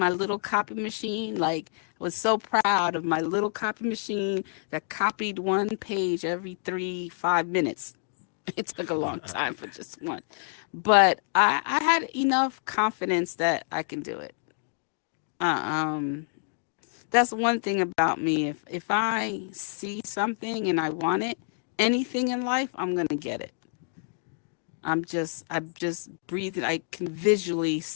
little copy machine. Like, I was so proud of my little copy machine that copied one page every 5 minutes. It took a long time for just one. But I had enough confidence that I can do it. Uh, um, that's one thing about me. If I see something and I want it, anything in life, I'm gonna get it. I'm just breathing. I can visually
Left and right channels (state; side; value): silent; right; digital silence